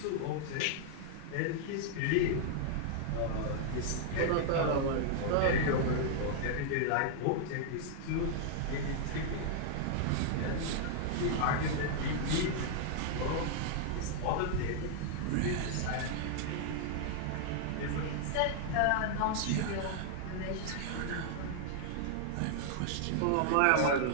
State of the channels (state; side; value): different; both; correlation -0.01